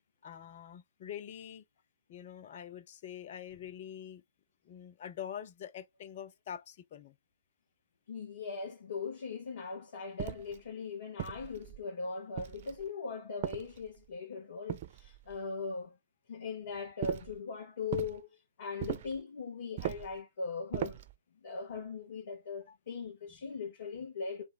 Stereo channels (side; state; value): both; inverted; correlation -0.48